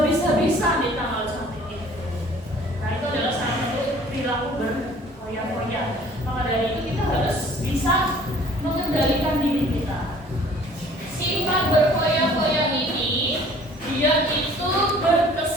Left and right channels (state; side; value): normal; both; correlation 0.53